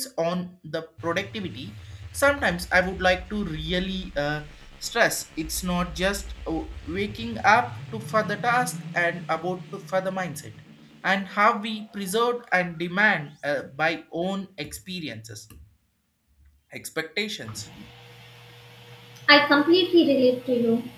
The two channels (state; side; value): identical; both; correlation 1.00